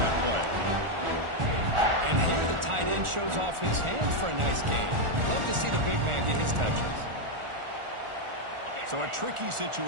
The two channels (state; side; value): late; left; 1.4 ms